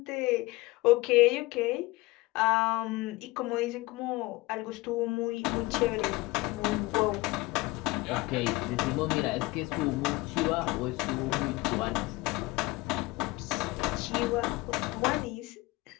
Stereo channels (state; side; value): quieter; right; 21.4 dB